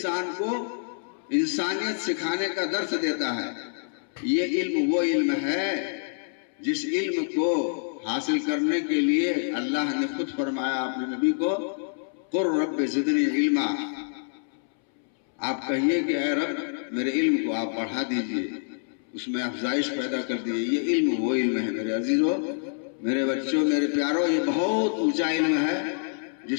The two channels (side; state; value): right; silent; 60 dB below the other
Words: کو انسانیت سکھانے کا درس دیتا ہے۔ یہ علم وہ علم ہے جس علم کو حاصل کرنے کے لیے اللہ نے خود فرمایا اپنے نبی کو، قُل رب زدنی علما، آپ کہیے کہ اے رب میرے علم کو آپ بڑھا دیجئے، اس میں افزائش پیدا کر دیجئے۔ یہ علم وہ علم ہے میرے عزیزوں، میرے بچوں، میرے پیاروں، یہ بہت اونچا علم ہے